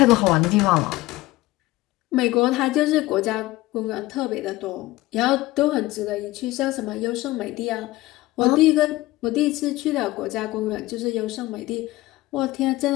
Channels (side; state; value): right; quieter; 18.4 dB